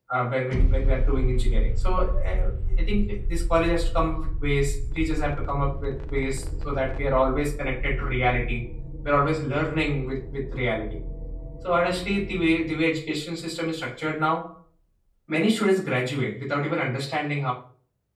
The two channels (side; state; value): both; identical; correlation 1.00